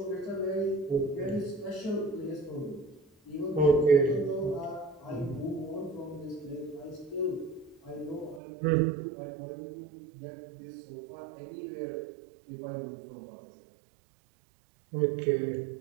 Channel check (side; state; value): left; drops out; at 8.4 s